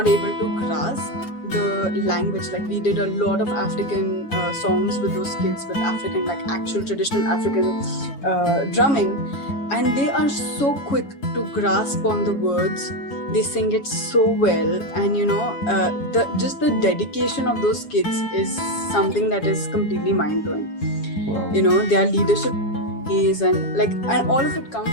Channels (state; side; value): late; right; 7.2 ms